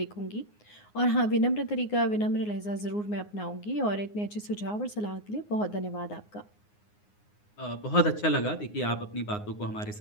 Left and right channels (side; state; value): right; late; 9.6 ms